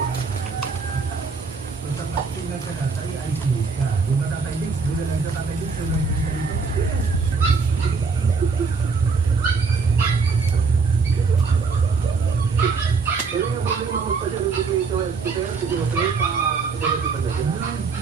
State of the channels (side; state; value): left; quieter; 4.8 dB